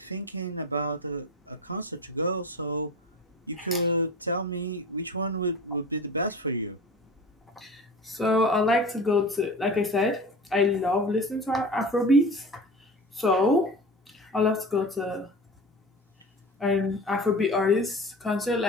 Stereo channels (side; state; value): both; normal; correlation 0.35